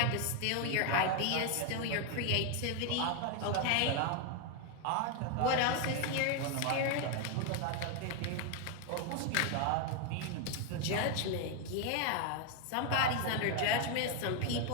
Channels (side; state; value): both; different; correlation 0.01